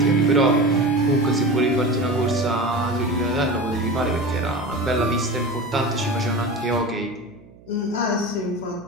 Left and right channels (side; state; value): right; noise; hum, 24 dB below the sound